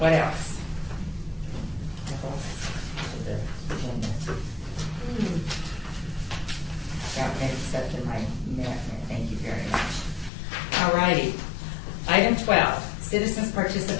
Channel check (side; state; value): right; drops out; at 10.3 s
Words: else? Got mixed up in my minute. Thank you very much. All righty. Item 12, citizens'